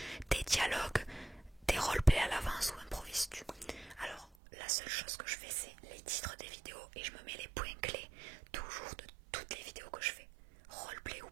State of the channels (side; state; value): left; drops out; at 4.2 s